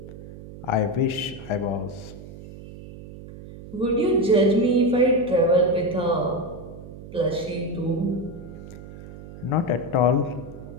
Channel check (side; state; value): right; noise; hum, 15 dB below the sound